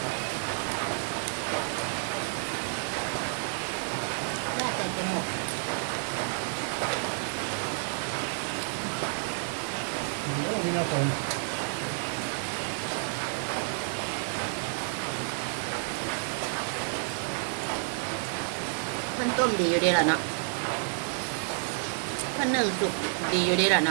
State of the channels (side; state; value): left; silent; 58 dB below the other